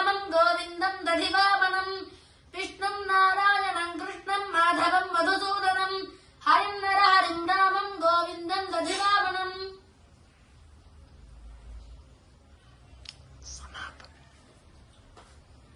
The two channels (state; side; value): identical; both; correlation 1.00